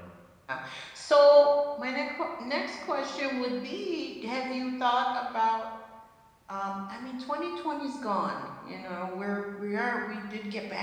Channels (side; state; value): both; identical; correlation 1.00